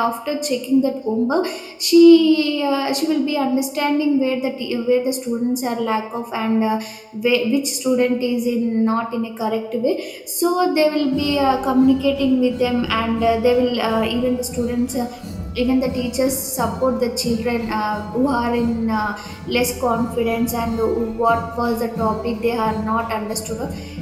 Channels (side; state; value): both; identical; correlation 1.00